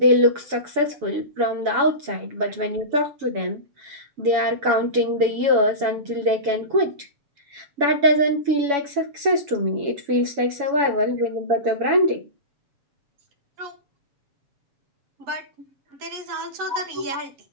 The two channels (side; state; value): left; late; 7.1 ms